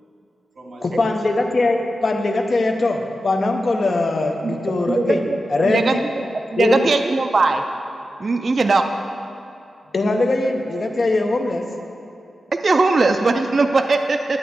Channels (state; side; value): normal; both; correlation 0.91